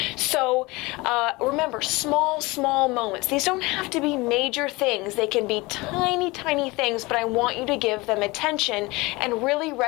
So remember, small moments. These don't have to be major things. They can be tiny things, but I want you to give them attention and really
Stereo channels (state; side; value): quieter; right; 23.0 dB